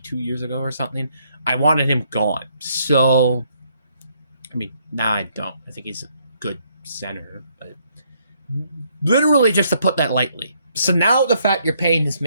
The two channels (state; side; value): inverted; both; correlation -0.71